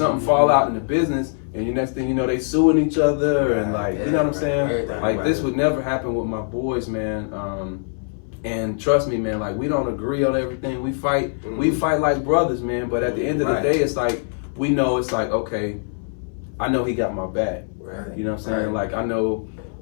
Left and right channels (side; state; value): right; silent; 61 dB below the other